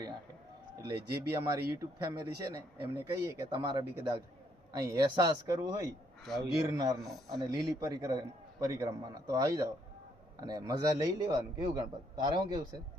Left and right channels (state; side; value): normal; both; correlation 0.71